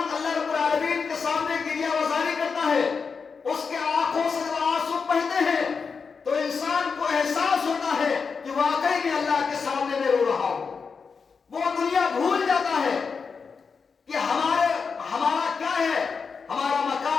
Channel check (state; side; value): quieter; right; 5.4 dB